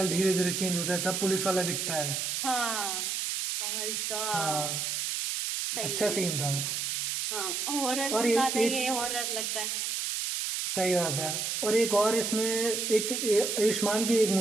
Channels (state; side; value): noise; right; hiss, 1 dB below the sound